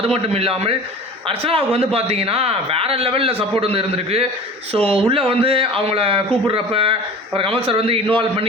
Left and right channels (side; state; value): both; normal; correlation 0.39